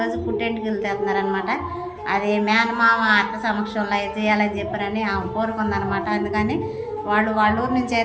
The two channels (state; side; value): identical; both; correlation 1.00